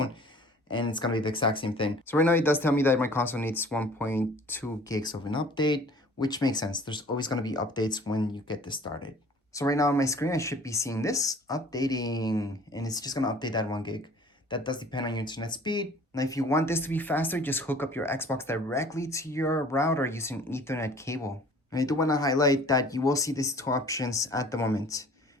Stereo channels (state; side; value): normal; both; correlation 0.49